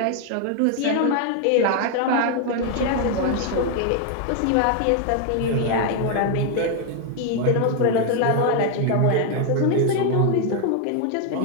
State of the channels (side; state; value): both; different; correlation 0.00